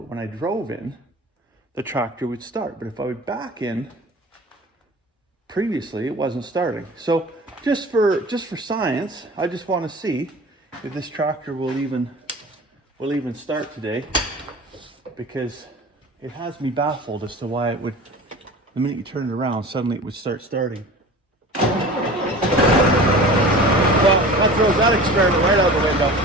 when I drove in, the tractor would start. But if I would back in, previously it wasn't starting. So just for science, I just want to see if this tractor will even start today, because it has me baffled as to why it would, the minute you turn it around, suddenly it would start starting. Well, that throws that experiment right out the window.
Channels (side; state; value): both; normal; correlation 0.38